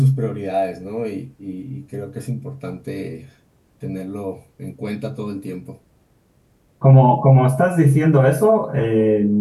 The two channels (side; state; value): both; identical; correlation 1.00